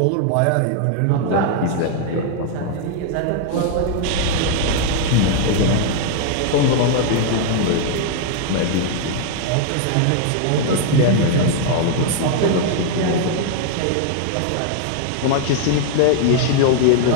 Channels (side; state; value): both; different; correlation 0.00